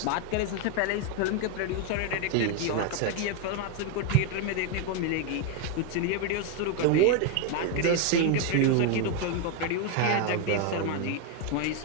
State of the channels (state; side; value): different; both; correlation 0.01